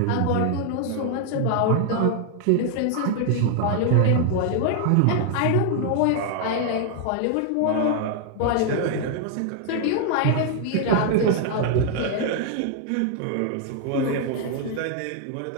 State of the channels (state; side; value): different; both; correlation 0.00